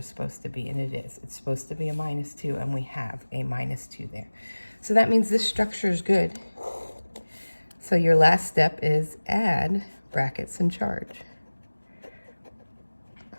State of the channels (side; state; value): both; inverted; correlation -1.00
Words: supposed to be, and it is. It's supposed to be a -2, and we have a -2 there. So that means this structure is good. So your last step is add brackets and charge.